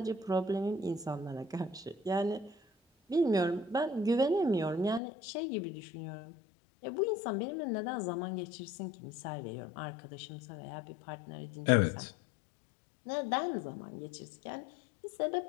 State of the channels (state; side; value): drops out; right; at 5.0 s